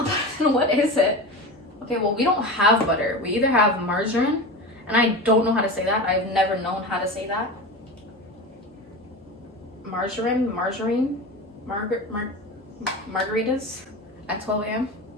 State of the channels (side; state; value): both; normal; correlation 0.27